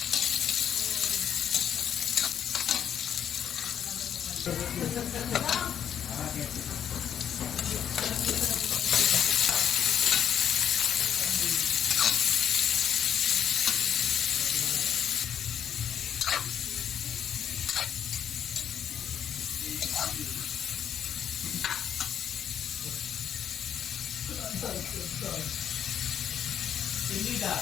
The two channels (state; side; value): quieter; right; 9.1 dB